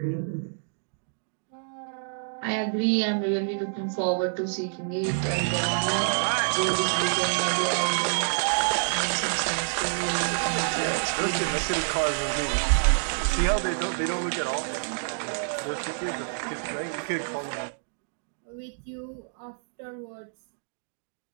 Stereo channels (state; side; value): silent; left; digital silence